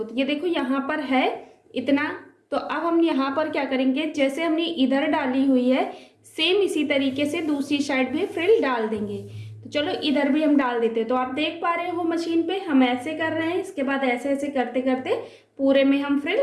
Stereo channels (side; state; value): both; identical; correlation 1.00